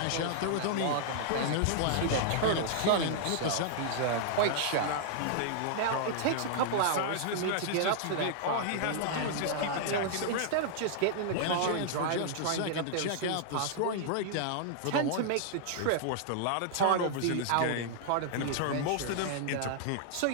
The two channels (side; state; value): both; different; correlation -0.01